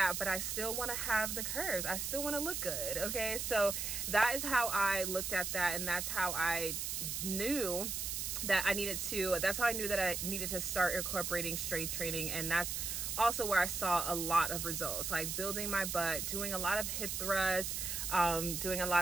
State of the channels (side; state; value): right; noise; hiss, 2 dB below the sound